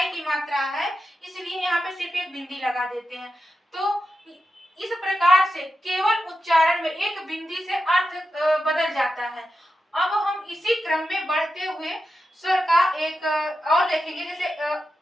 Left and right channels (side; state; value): both; normal; correlation 0.89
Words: की मात्रा है, इसलिए यहाँ पे सिर्फ एक बिंदी लगा देते हैं। तो इस प्रकार से केवल उच्चारण में एक बिंदी से अर्थ बदल जाता है। अब हम इसी क्रम में बढ़ते हुए स्वर का एक और देखेंगे, जैसे